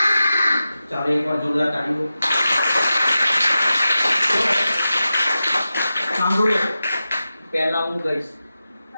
ચાલો એકવાર જોરદાર તાળીઓ. સાંભળો, પહેલા હું ગઈશ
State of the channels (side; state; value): both; inverted; correlation -0.93